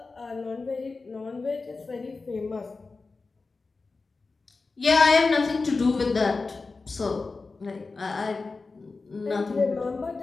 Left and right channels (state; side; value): quieter; right; 4.0 dB